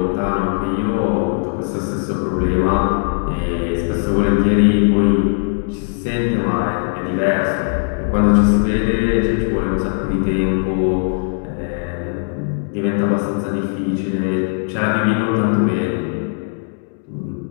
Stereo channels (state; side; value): silent; right; digital silence